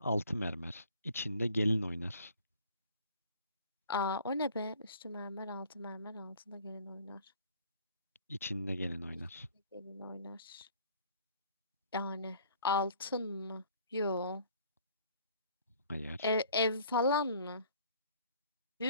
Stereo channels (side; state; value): both; inverted; correlation -0.55